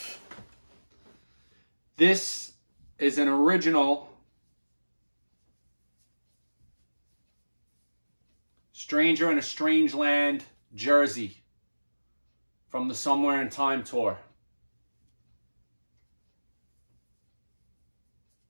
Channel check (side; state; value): both; inverted; correlation -1.00